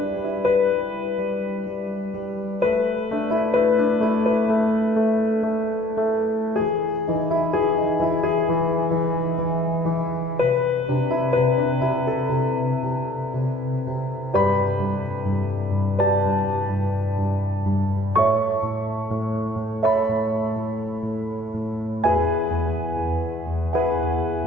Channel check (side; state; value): both; normal; correlation 0.58